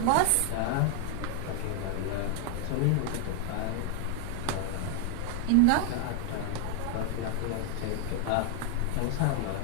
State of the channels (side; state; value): both; different; correlation 0.00